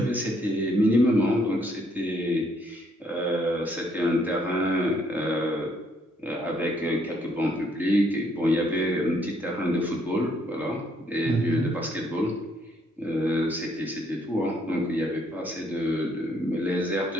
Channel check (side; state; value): both; normal; correlation 0.69